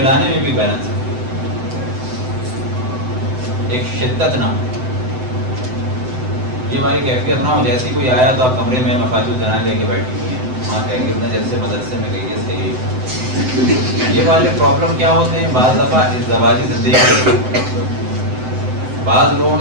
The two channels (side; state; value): left; late; 7.9 ms